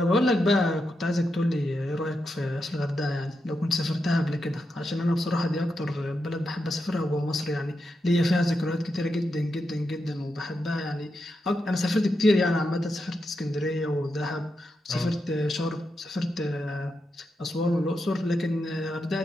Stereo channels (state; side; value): normal; both; correlation 0.86